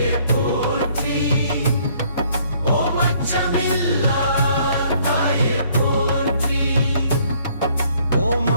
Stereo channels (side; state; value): both; inverted; correlation -0.63